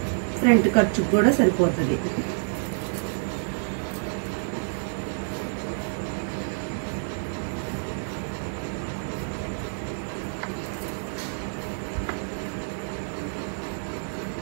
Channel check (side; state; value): left; silent; digital silence